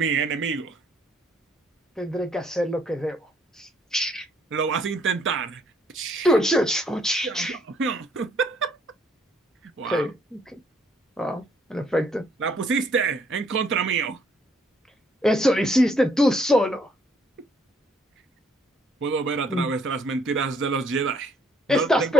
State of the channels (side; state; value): both; normal; correlation 0.66